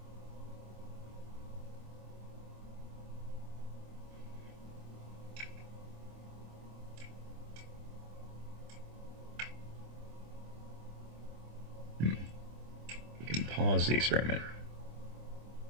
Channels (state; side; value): late; left; 25 ms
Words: We can pause the experiment.